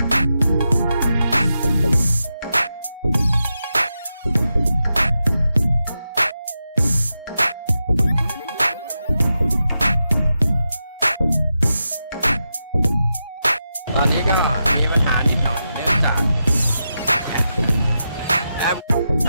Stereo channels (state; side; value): inverted; both; correlation -0.88